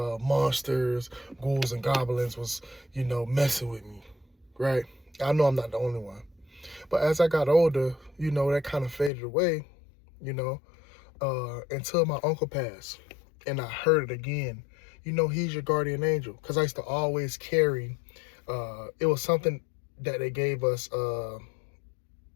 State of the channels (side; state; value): right; drops out; at 9.1 s